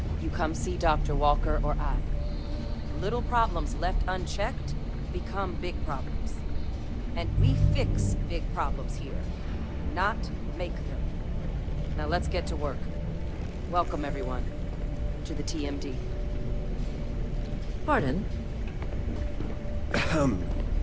you come see Dr. Walker or I. Little problems left unchecked become big problems. And we fix big problems here, not make them. Now let's get to work. Welcome, everyone, to the TMD. Pardon?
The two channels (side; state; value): both; identical; correlation 1.00